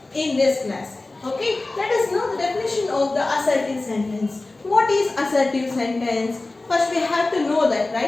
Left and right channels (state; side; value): quieter; right; 3.1 dB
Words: in this class. Okay, let us know the definition of the assertive sentence. What is assertive sentence? First we have to know that,